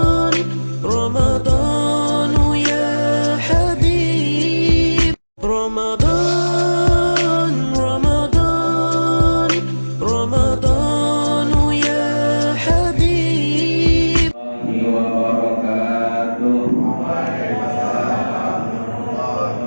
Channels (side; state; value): both; inverted; correlation -1.00